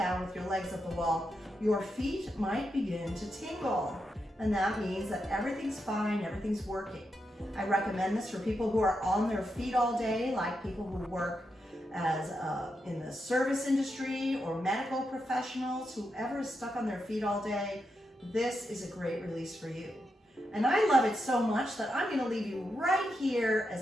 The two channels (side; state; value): both; normal; correlation 0.85